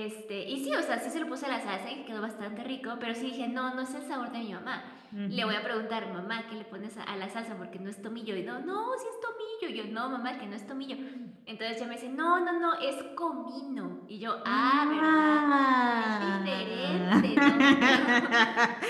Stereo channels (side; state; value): both; identical; correlation 1.00